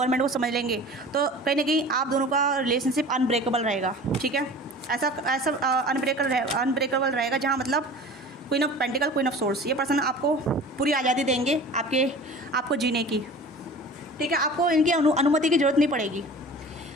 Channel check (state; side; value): normal; both; correlation 0.40